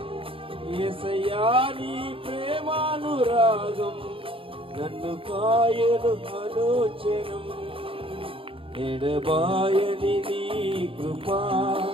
యేసయ్యా నీ ప్రేమానురాగం నన్ను కాయను అనుచనం. ఎడబాయని నీ కృపా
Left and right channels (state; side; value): late; left; 0.26 ms